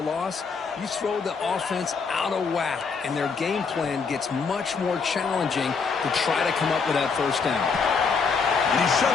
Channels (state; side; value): quieter; right; 5.2 dB